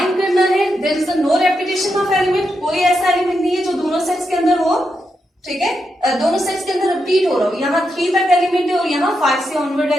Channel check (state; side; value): normal; both; correlation 0.84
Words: करना है। There is no repetition of element, कोई ऐसा एलिमेंट नहीं है जो दोनों सेट्स के अंदर हो, ठीक है, दोनों सेट्स के अंदर रिपीट हो रहा हो। यहाँ 3 तक एलिमेंट है और यहाँ 5 से ऑनवर्ड